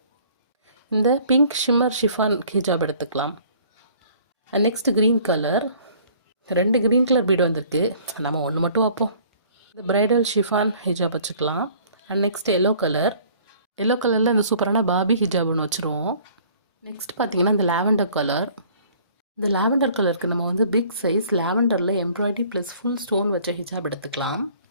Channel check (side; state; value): both; inverted; correlation -0.54